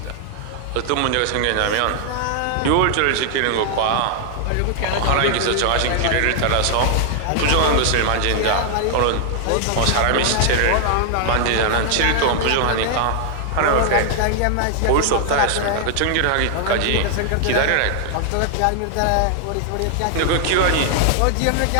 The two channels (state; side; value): different; both; correlation 0.00